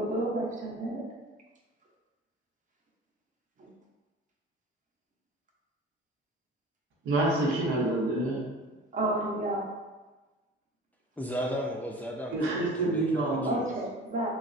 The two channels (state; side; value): normal; both; correlation 0.40